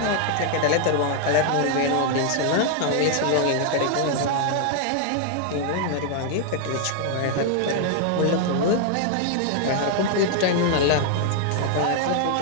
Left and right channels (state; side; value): different; both; correlation 0.00